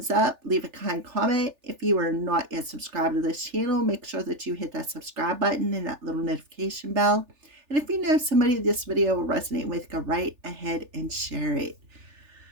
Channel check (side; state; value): left; late; 3.4 ms